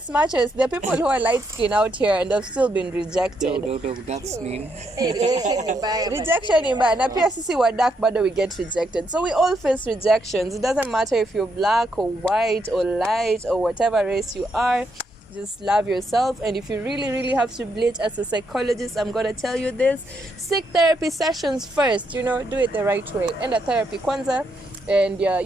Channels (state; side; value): normal; both; correlation 0.78